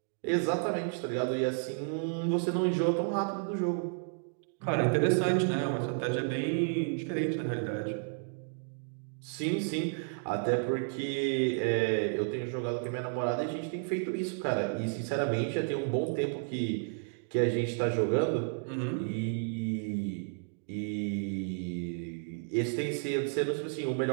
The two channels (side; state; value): left; silent; digital silence